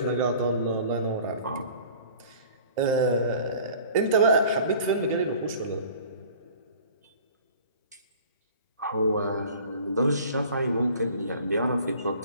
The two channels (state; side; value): inverted; both; correlation -0.47